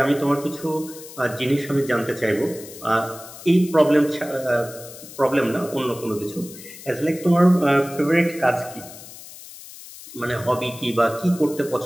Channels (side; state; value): left; noise; hiss, 16 dB below the sound